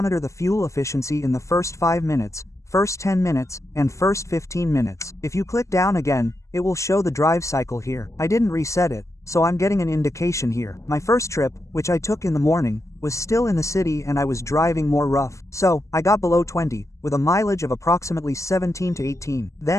the fuel efficiency in the first 5 minutes, first 10 minutes, and first 15 minutes. If you click down again, it will show the drive cycle here. I didn't reset it, so I'm getting an indication here. My first trip, which I took in the morning, was still in the city and I was driving more rough. So, I got below 20, with a mileage of approximately 17 to 18.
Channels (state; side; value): late; right; 0.15 ms